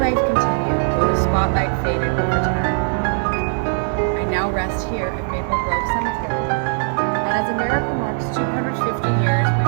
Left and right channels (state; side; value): silent; left; digital silence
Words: continued, though the spotlight faded over time. I now rest here at Maple Grove Cemetery. And as America marks 250 years,